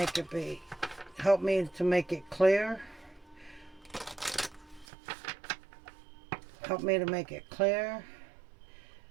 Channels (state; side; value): drops out; left; at 4.9 s